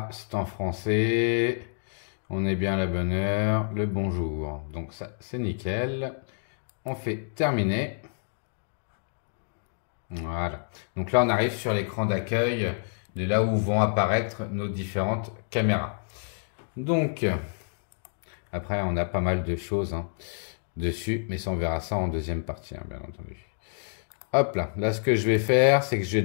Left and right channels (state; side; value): silent; right; digital silence